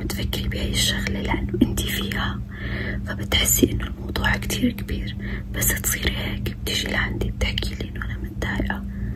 تفكري بهاي الشغلة، لأنه انتي فيها فبتحسي انه الموضوع كتير كبير، بس تصيري هيك بتيجي لعندي بتحكي لي انه انا متضايقة،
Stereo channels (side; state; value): both; identical; correlation 1.00